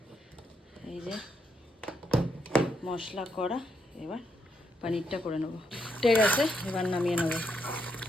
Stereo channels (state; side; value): normal; both; correlation 0.78